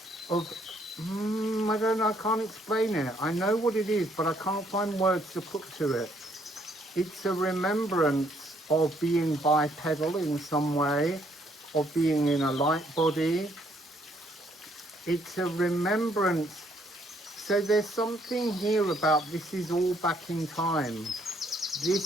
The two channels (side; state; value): both; normal; correlation 0.68